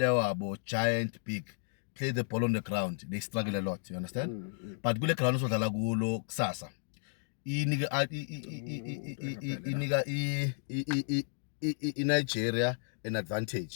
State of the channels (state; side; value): silent; right; digital silence